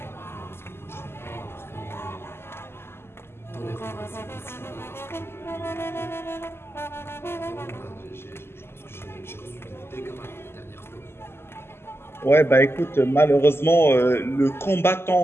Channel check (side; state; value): right; late; 0.12 ms